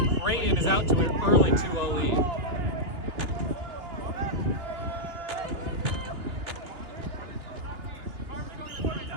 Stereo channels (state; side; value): late; left; 2.8 ms